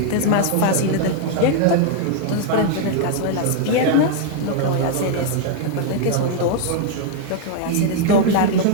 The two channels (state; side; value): different; both; correlation 0.00